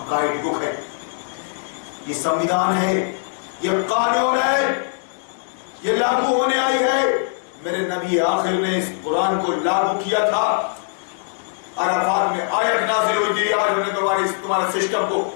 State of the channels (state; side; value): silent; right; 65 dB below the other